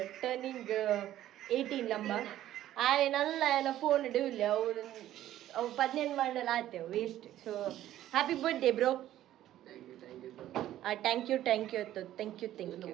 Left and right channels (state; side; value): quieter; left; 13.0 dB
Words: turning 18 ನಮ್ಮ ಆಯ್ನಲ್ಲ ಏನ ಫೋನ್ ಇಡವಿಲ್ಲ ಅವು 18 ಮಾಡಲ್ಲ ಆತೇವೆ waste. So happy birthday bro. Thank you ಅತ್ತು ಥ್ಯಾಂಕ್ ಯು